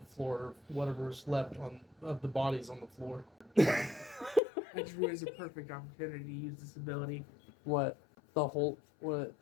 floor, whatever's left of the bodies on the floor. That drew is a perfect opportunity to use this ability. What? The whole, what?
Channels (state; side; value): drops out; right; at 4.4 s